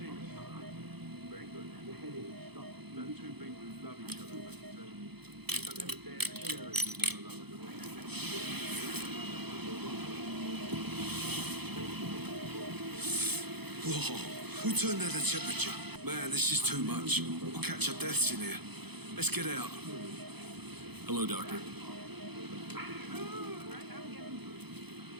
Very good. The heading stopped. No, two people who love each other, but don't ever dare to share it with one another. Whoa, who turned down the temperature? Man, this is too much. We'll catch our deaths in here. Let's get out. Hello, Doctor.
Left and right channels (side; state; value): left; late; 0.98 ms